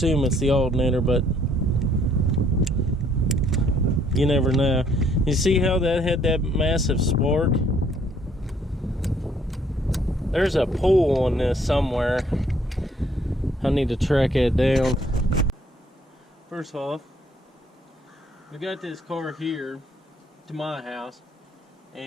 it's the alternator, but you never know. You see how that had that massive spark? There's a pull on this somewhere. I need to track it down. First off, we got this car here to my house,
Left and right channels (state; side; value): normal; both; correlation 0.65